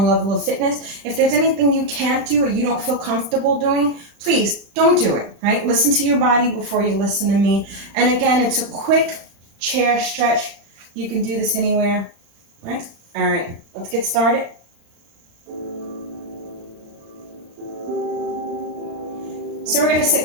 level of fitness. If there's anything you can't do or you don't feel comfortable doing, please don't do it, right? Listen to your body before you listen to me. And again, it's a quick chair stretch. You can do this anywhere, right? All right, let's get started. So we're going to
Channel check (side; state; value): left; late; 35 ms